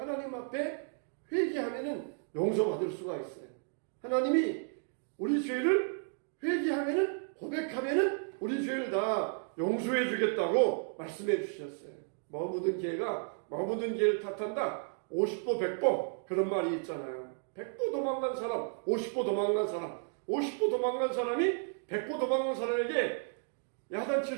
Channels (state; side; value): silent; left; 56 dB below the other